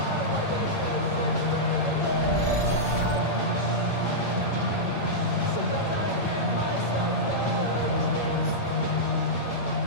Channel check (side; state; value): right; late; 8.8 ms